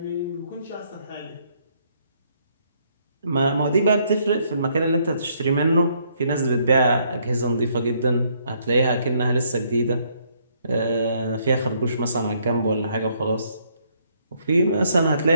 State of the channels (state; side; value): inverted; both; correlation -0.70